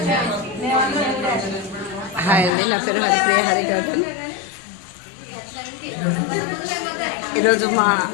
హాయ్ అండి, నా పేరు హరిప్రియ హరిగౌతమ్. ఈరోజు మా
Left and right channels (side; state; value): right; drops out; at 2.5 s